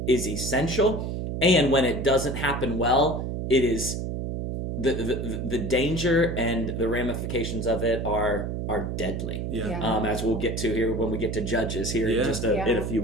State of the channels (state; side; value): noise; right; hum, 3 dB below the sound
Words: is essential. And when it doesn't happen well, it is the danger and the ramifications of it are deadly. As we'll get to here when we get to Judges here in just in a few